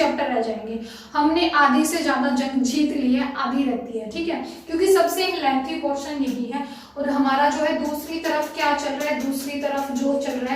रह जाएंगे। हमने आधी से ज्यादा जंग जीत ली है, आधी रहती है, ठीक है, क्योंकि सबसे लेंथी पोर्शन यही है। और हमारा जो है दूसरी तरफ क्या चल रहा है, दूसरी तरफ जो चल रहा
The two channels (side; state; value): both; identical; correlation 1.00